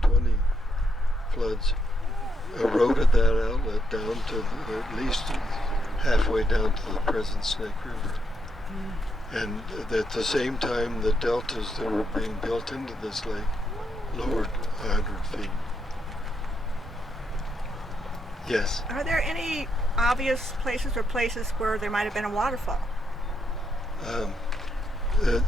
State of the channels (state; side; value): normal; both; correlation 0.78